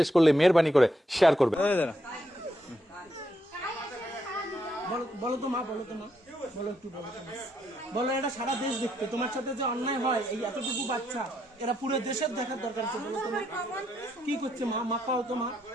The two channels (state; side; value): normal; both; correlation 0.77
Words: করলে মেহেরবানি করে শেয়ার করবে। বলো তো মা, বলো তো মা, বলো একটু বলো তো মা। বলো, এটা সারা দেশ দেখতে তোমার সাথে যে অন্যায় হয়, এই এতটুকু বাচ্চা এরা পুরো দেশের দেখার দরকার আছে। বলো তো মা, কি করছে মা? মা পাও তো মা,